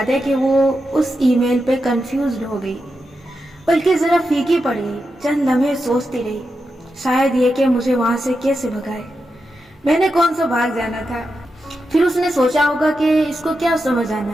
ہے کہ وہ اس ای میل پہ کنفیوزڈ ہو گئی، بلکہ ذرا پھیکی پڑ گئی۔ چند لمحے سوچتی رہی، شاید یہ کہ مجھے وہاں سے کیسے بھگائے، میں نے کون سا بھاگ جانا تھا۔ پھر اس نے سوچا ہوگا کہ اس کو کیا سمجھ آنا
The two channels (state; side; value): normal; both; correlation 0.88